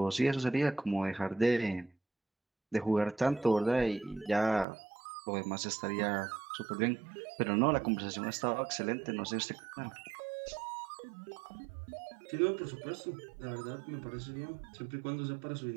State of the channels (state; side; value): drops out; left; at 4.7 s